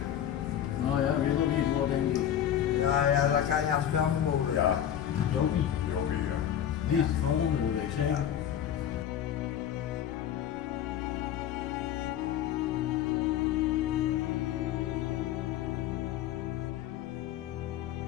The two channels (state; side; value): quieter; right; 10.3 dB